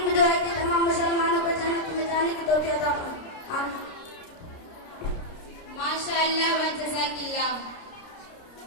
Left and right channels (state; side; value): late; right; 29 ms